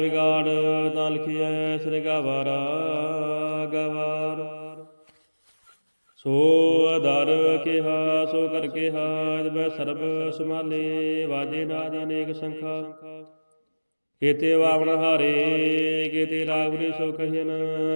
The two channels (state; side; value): inverted; both; correlation -1.00